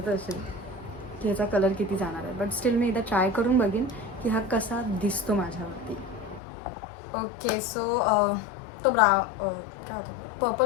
असेल की याचा कलर किती जाणार आहे. बट स्टील मी एकदा ट्राय करून बघीन की हा कसा दिसतो माझ्यावरती. ओके सो तो काय होतं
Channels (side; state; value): right; drops out; at 6.4 s